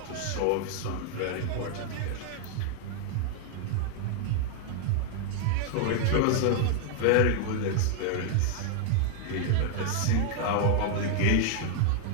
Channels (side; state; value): both; different; correlation 0.00